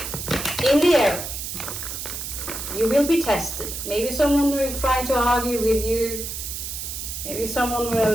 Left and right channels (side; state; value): right; noise; hiss, 6 dB below the sound